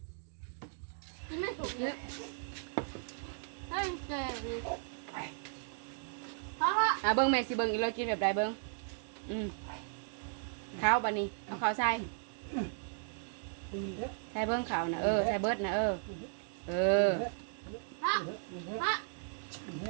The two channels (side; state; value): left; silent; digital silence